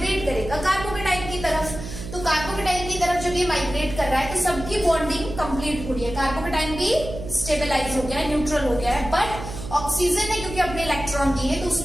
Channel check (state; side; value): noise; right; hum, 10 dB below the sound